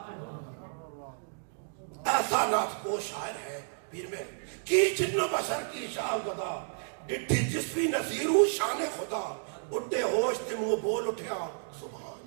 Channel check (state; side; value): silent; left; digital silence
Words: ایسا نعت کو شاعر ہے پیر میں کی جن و بشر کی شاہ خدا، ڈٹھی جسوی نصیر شان خدا، اٹھے ہوش تے منہ بول اٹھیا